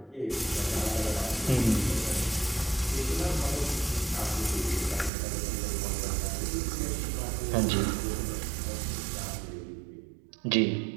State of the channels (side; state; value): left; drops out; at 5.1 s